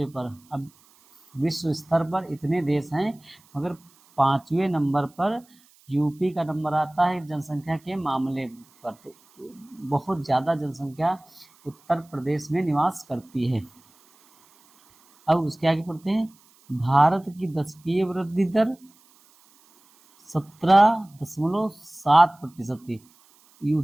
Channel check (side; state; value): right; noise; hiss, 30 dB below the sound